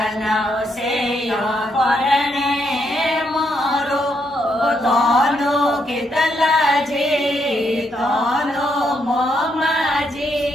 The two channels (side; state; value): both; normal; correlation 0.77